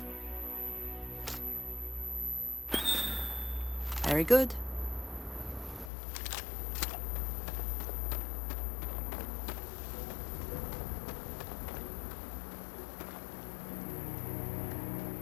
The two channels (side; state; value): right; drops out; at 5.9 s